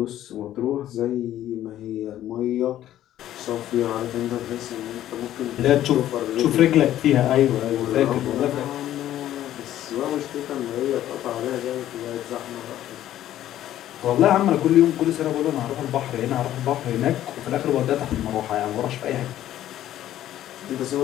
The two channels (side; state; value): right; quieter; 12.6 dB